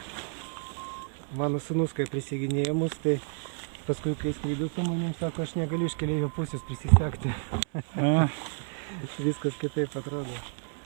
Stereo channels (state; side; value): silent; left; 58 dB below the other